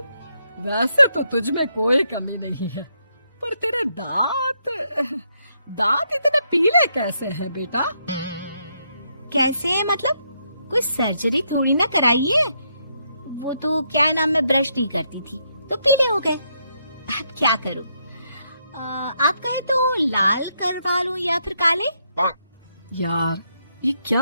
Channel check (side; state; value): both; inverted; correlation -0.77